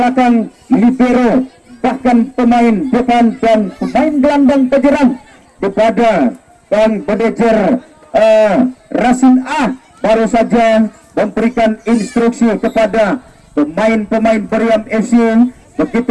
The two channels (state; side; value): identical; both; correlation 1.00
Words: libero, bahkan pemain depan dan pemain gelandang penyerang kepada Bang manajer Rasin A baru saja memberikan instruksi kepada pemain-pemain Periam FC.